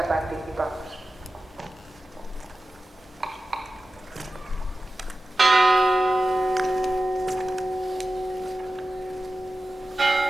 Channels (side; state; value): both; normal; correlation 0.95